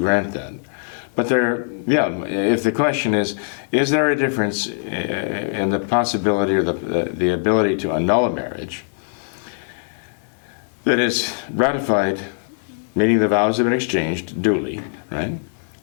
that. But if the question is there a difference in the possibility or the ability to annul a marriage that is ratified, meaning the vows have been exchanged duly, right?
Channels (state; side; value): silent; right; digital silence